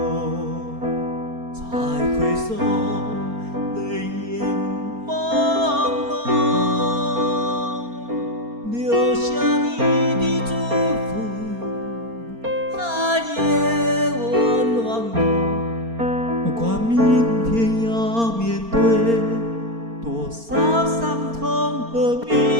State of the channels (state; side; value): late; left; 4.3 ms